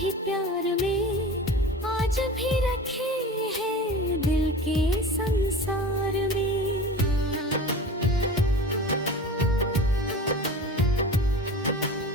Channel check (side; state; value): both; normal; correlation 0.35